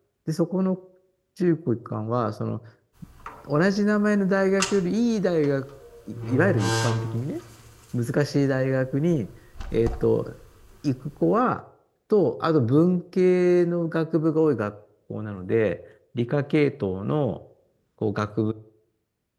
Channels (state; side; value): identical; both; correlation 1.00